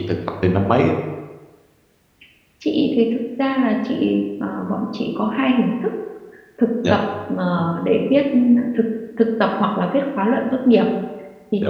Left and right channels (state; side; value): identical; both; correlation 1.00